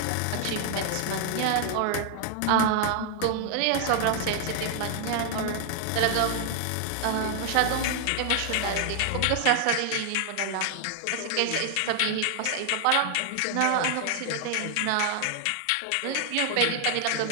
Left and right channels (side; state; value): both; different; correlation 0.00